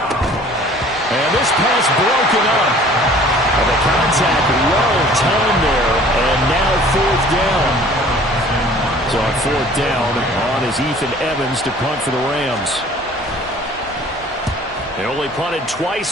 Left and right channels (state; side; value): normal; both; correlation 0.51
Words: And this pass broken up. And the contact well timed there. And now 4th down. So on 4th down, on is Ethan Evans to punt for the Rams. They only punted